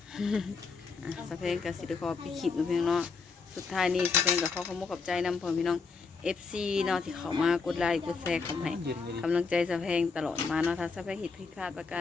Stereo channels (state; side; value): quieter; right; 4.7 dB